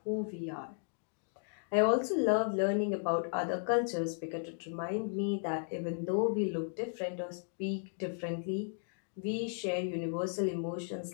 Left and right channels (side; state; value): right; silent; digital silence